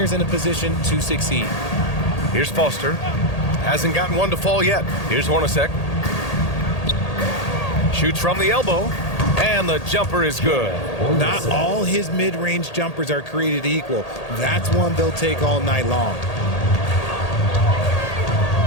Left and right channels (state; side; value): late; right; 1.8 ms